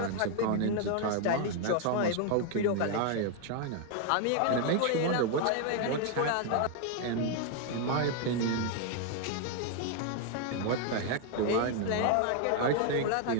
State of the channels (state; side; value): different; both; correlation 0.01